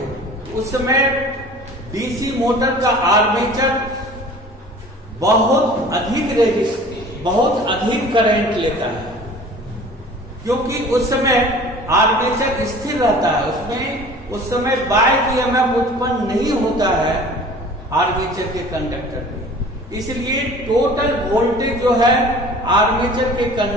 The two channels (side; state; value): both; normal; correlation 0.45